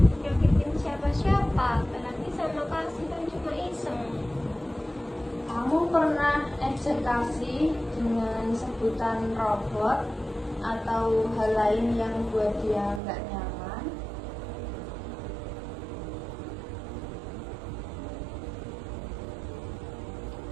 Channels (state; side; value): drops out; left; at 13.0 s